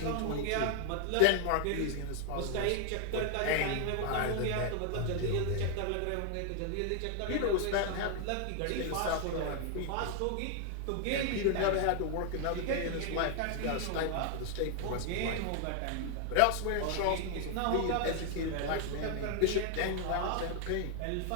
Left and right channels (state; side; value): different; both; correlation 0.00